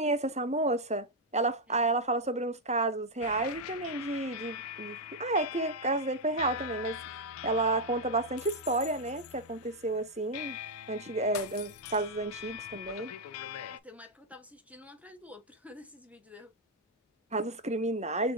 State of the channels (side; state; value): both; normal; correlation 0.00